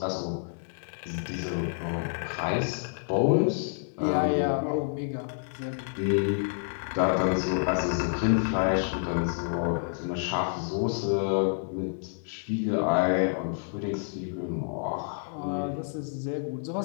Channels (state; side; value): silent; right; 59 dB below the other